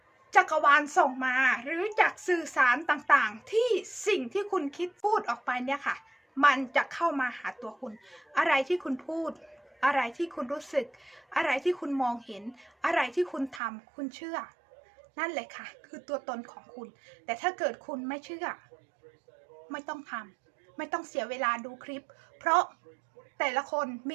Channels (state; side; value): drops out; left; at 13.6 s